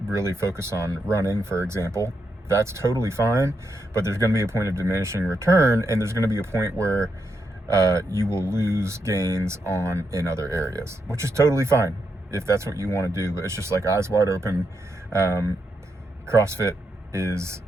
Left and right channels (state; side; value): normal; both; correlation 0.82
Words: really focus on running, for example, that's totally fine, but there's going to be a point of diminishing return, and there's going to be a point where you will lose gains in other areas, which is totally fine if that's what you want to do. But it's just like, eyes wide open. CrossFit is